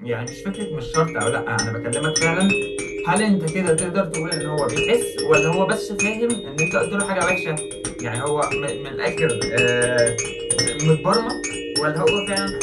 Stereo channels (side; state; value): both; identical; correlation 1.00